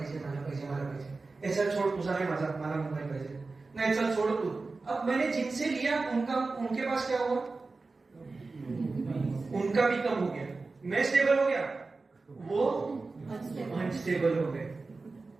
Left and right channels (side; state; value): left; quieter; 3.8 dB